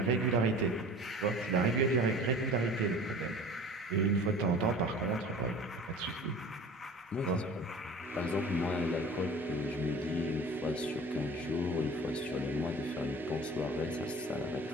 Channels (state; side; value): normal; both; correlation 0.41